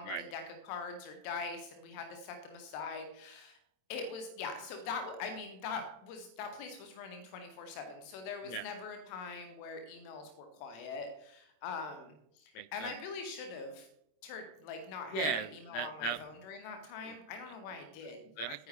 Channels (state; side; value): late; right; 26 ms